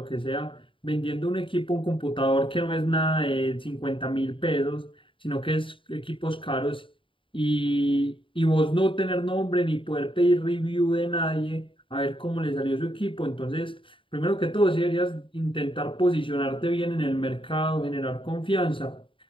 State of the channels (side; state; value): right; late; 0.25 ms